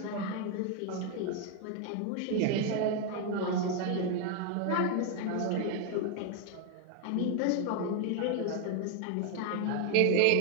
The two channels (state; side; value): different; both; correlation 0.00